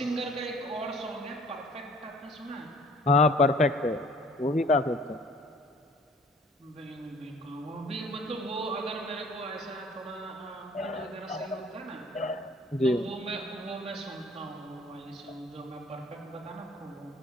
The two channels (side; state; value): both; normal; correlation 0.53